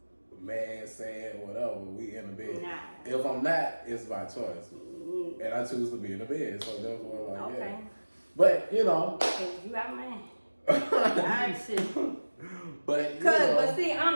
man, saying whatever. We in the bed. Nah. If I'm not, it's by choice, and I choose to be in the bed. So therefore, like yeah. But you know, you out man. I should. But but see,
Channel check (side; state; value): both; inverted; correlation -1.00